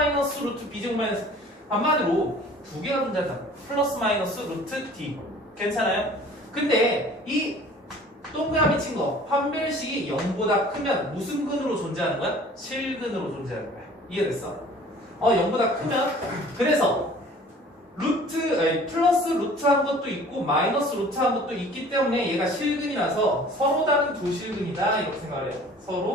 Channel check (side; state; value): both; normal; correlation 0.49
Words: 루트 b제곱 마이너스 한마디로 두 개가 존재한다. 플러스 마이너스 루트 d. 괜찮아요? 근데 이 동그라미 친 거 판별식이 0보다 크면 무슨 근으로 존재하는 거야? 실근으로 존재하는 거야. 이해됐어? 0보다 크면 그래서 플러스 루트한 것도 있고 마이너스 루트한 것도 있기 때문에 얘가 실근이라서 서로 다른 두 실근이다 이렇게 생각을 해요.